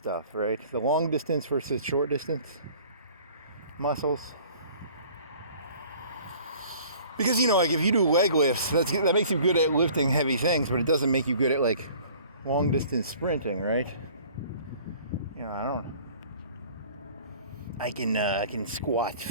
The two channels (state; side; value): inverted; both; correlation -0.50